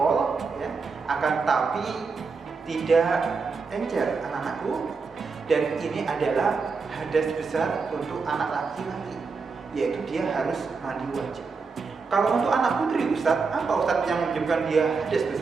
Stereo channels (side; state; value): left; quieter; 4.8 dB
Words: ya, akan tapi tidak encer anak-anakku, dan ini adalah hadas besar untuk anak laki-laki, yaitu dia harus mandi wajib. Kalau untuk anak putri Ustadz, apa Ustadz yang menyebabkan dia hadas